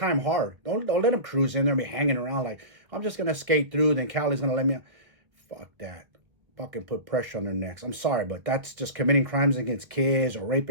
hard. Don't let them cruise in there and be hanging around like, I'm just going to skate through, then Callie's going to let me out. Fuck that. Fucking put pressure on their necks. I'm sorry, but that's just committing crimes against kids or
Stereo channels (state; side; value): late; left; 1.7 ms